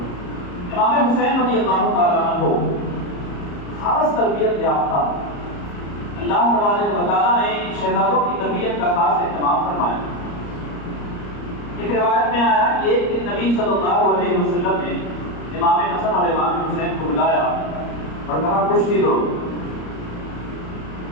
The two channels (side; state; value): right; late; 34 ms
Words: امام حسین رضی اللہ تعالیٰ عنہ خاص تربیت یافتہ، اللہ تبارک و تعالیٰ نے شہزادوں کی تربیت کا خاص اہتمام فرمایا۔ ایک روایت میں آیا کہ ایک دن نبی صلی اللہ علیہ وسلم نے امام حسن اور امام حسین کو بلایا اور کہا کشتی دو،